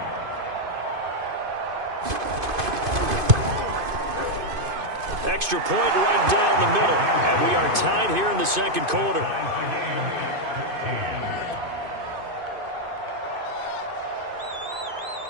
Extra point right down the middle. And we are tied here in the second quarter.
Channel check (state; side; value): late; left; 2.5 ms